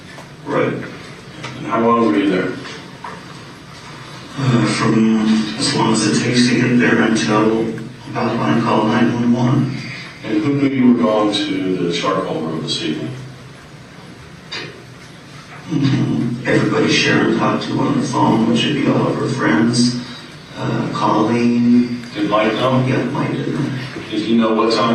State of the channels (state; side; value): identical; both; correlation 1.00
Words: Right. And how long were you there? From as long as it takes to get there until about when I call 911. And who knew you were going to the charcoal room this evening? Everybody Sharon talked to on the phone, which would be all of her friends. Colleen, Did Mike know? Yeah, Mike did know. Did he know what